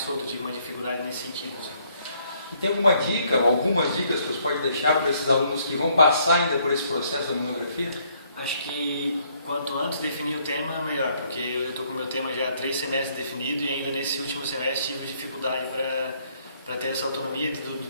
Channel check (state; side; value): inverted; both; correlation -0.68